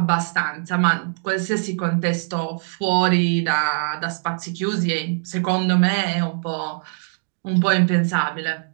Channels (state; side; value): silent; left; digital silence